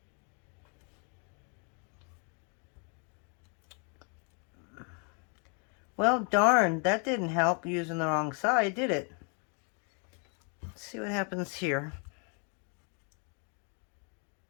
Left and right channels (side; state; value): right; quieter; 38.7 dB